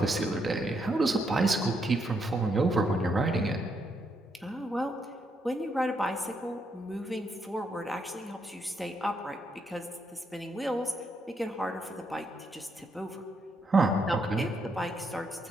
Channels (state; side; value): normal; both; correlation 0.77